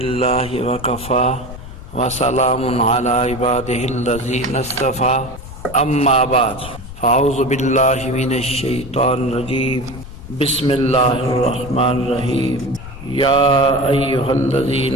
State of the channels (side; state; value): left; noise; rumble, 13 dB below the sound